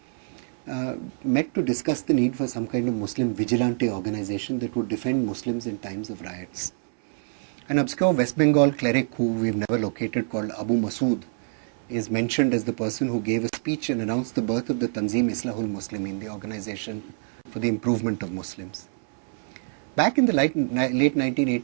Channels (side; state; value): left; silent; 61 dB below the other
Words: met to discuss the need for some kind of Muslim vigilante organization that would defend Muslims in times of riots. An obscure West Bengal cleric who we've never located, called Abu Masood, is mentioned as the person who gave a speech and announced the birth of the Tanzim Islahul Muslimin, the organization for the improvement of Muslims. Back in the late